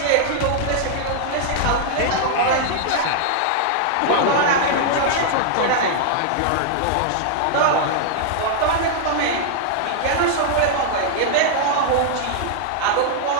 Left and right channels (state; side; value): different; both; correlation -0.01